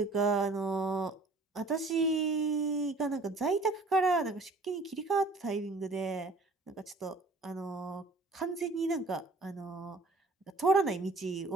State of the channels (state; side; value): quieter; left; 3.2 dB